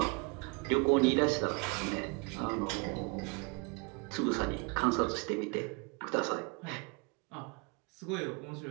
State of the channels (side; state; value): left; quieter; 31.4 dB